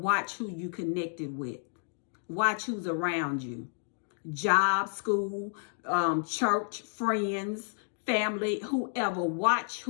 who you connected with. Watch who's around you. Job, school, church, friends, family, whoever. Watch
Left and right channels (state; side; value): silent; right; digital silence